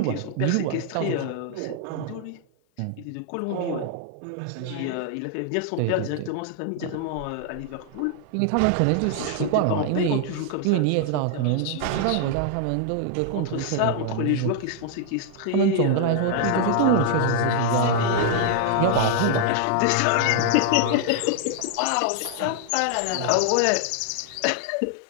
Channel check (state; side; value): different; both; correlation 0.00